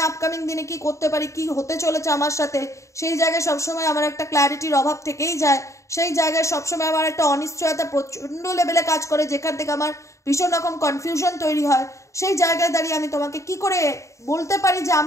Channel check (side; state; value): right; late; 0.15 ms